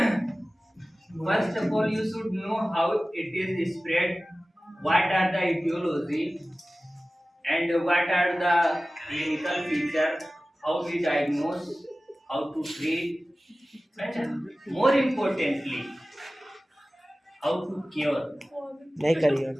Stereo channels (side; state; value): both; normal; correlation 0.97